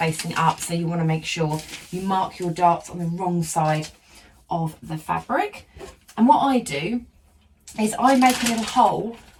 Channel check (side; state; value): both; identical; correlation 1.00